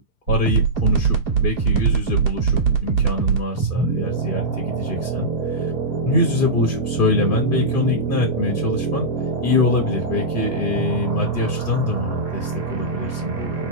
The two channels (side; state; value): right; late; 2.5 ms